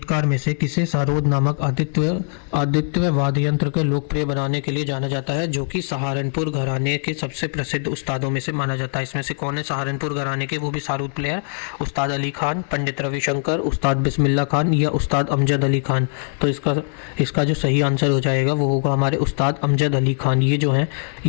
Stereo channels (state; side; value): silent; right; 65 dB below the other